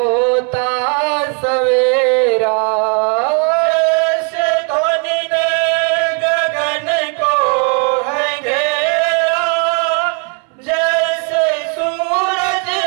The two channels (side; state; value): left; quieter; 37.8 dB